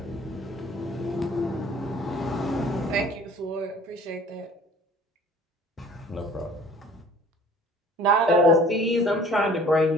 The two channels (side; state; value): both; normal; correlation 0.50